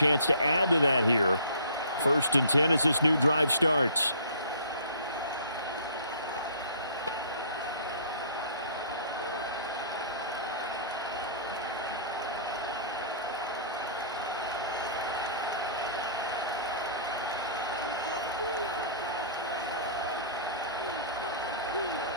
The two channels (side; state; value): both; inverted; correlation -0.49